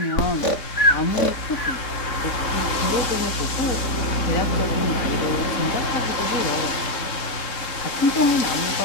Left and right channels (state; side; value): late; right; 3.7 ms